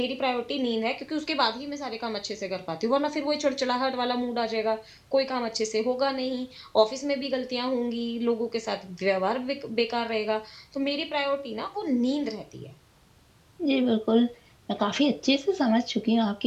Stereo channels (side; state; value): both; identical; correlation 1.00